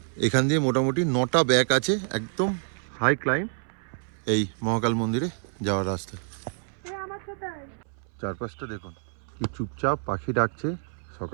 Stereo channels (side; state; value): left; silent; 60 dB below the other